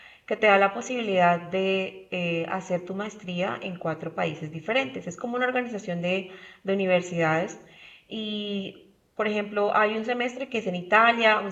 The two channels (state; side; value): identical; both; correlation 1.00